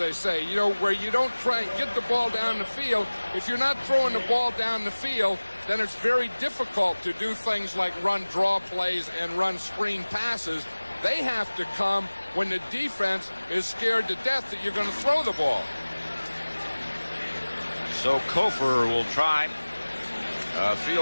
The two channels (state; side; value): inverted; both; correlation -1.00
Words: say, you know, where you don't try and get the ball down the field. If you're not throwing the ball down the field, then it's very difficult to do things like run draw plays and run screen passes. They have to come when the defense is scared to death that you're going to throw the ball. So Kofor will try a